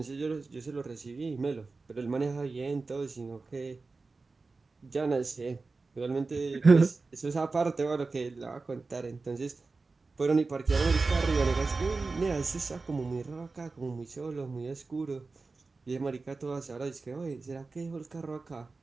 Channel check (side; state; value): left; quieter; 3.9 dB